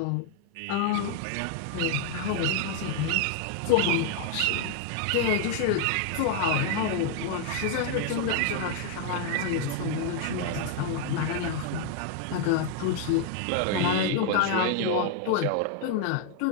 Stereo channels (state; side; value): different; both; correlation 0.00